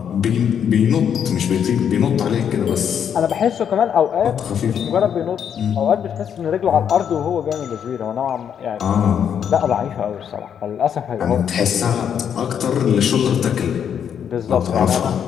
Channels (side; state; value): right; quieter; 8.3 dB